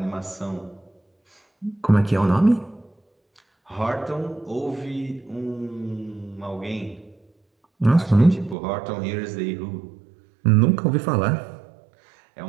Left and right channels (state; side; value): drops out; left; at 8.6 s